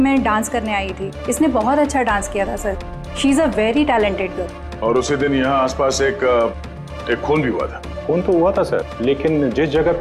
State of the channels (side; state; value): both; identical; correlation 1.00